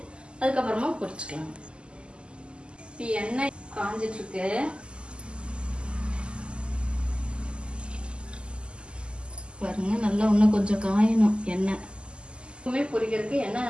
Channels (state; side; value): late; left; 0.051 ms